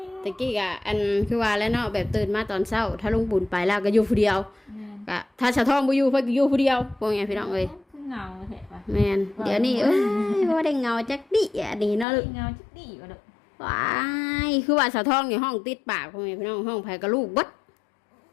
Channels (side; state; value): right; drops out; at 12.1 s